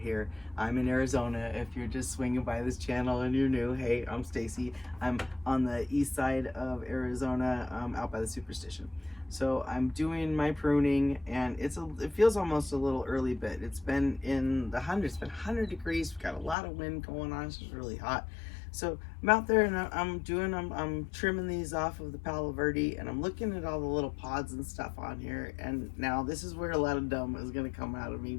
I'm in Arizona. If you're just swinging by this channel and you're new, hey, I'm Stacy. I'm on the east side of Arizona, out by the Superstition. So I'm doing my pruning, and it feels almost a little early, but it's been in the hundreds. It's been 100 degrees. We've got a lot of wind going on. It's just really hot. So I'm out there and I'm trimming these off of the Palo Verde, and I'm looking at all the little pods and stuff on here. And now this is where a lot of dumb is gonna come out of me,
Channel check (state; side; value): drops out; right; at 16.6 s